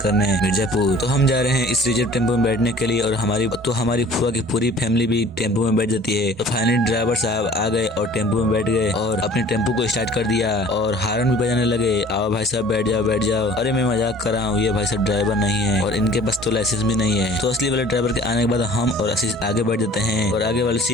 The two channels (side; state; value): both; normal; correlation 0.49